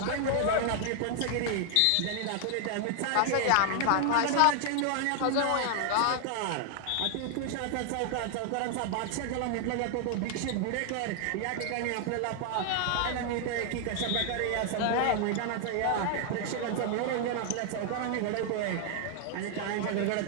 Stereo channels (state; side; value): different; both; correlation 0.00